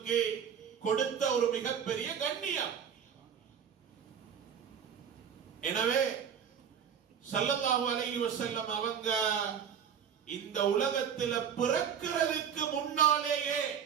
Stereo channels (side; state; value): left; quieter; 7.9 dB